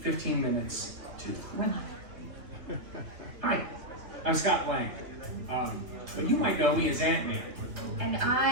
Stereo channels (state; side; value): late; left; 3.0 ms